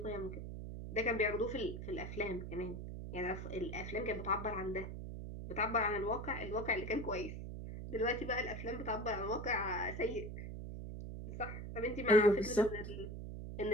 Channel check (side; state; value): right; noise; hum, 7 dB below the sound